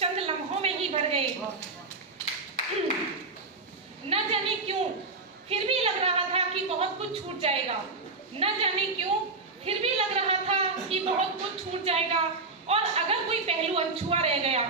लम्हों में ही भर गए। न जाने क्यों फिर भी लग रहा था कि बहुत कुछ छूट जाएगा, न जाने क्यों फिर भी लग रहा था कि बहुत कुछ छूट जाएगा। और अगर कोई पहलू अनछुआ रह गया,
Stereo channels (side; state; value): left; quieter; 3.8 dB